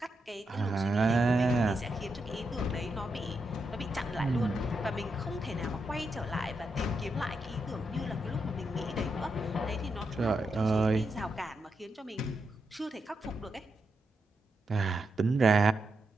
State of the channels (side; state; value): both; normal; correlation 0.84